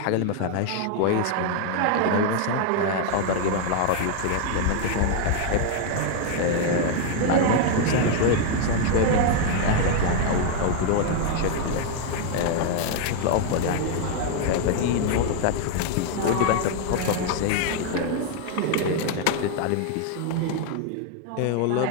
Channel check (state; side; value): different; both; correlation 0.00